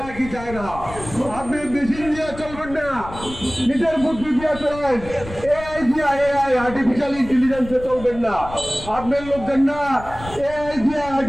কি চায় না। আপনি মেশিন দিয়ে চলবেন না, নিজের বুদ্ধি দিয়ে চলেন। এআই দিয়া, এআই আর্টিফিশিয়াল ইন্টেলিজেন্সে চলবেন না। আপনার লোকজন না এআই দিয়া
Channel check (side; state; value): left; noise; rumble, 14 dB below the sound